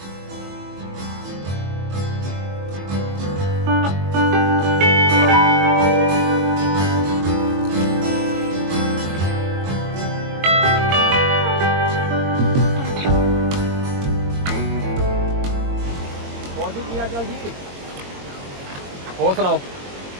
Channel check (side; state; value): left; late; 22 ms